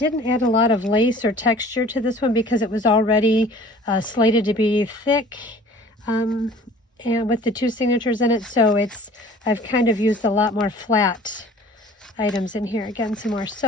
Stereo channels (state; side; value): normal; both; correlation 0.48